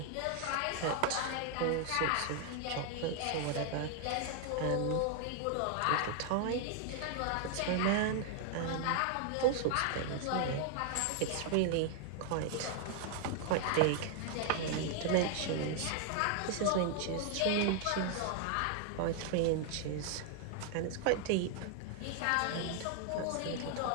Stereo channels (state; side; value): different; both; correlation 0.00